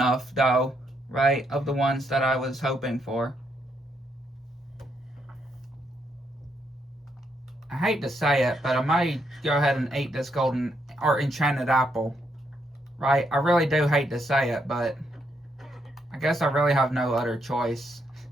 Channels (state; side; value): normal; both; correlation 0.77